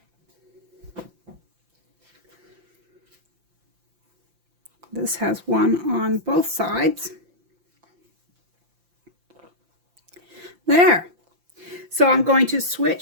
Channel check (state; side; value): late; left; 5.8 ms